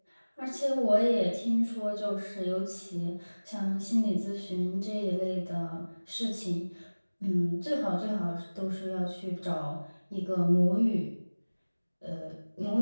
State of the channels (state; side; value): inverted; both; correlation -1.00